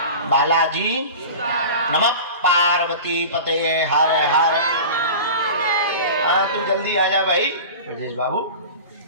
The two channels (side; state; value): both; inverted; correlation -0.34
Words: बालाजी, नमः पार्वती पते हर हर। हाँ, तू जल्दी आ जा भाई ब्रजेश बाबू।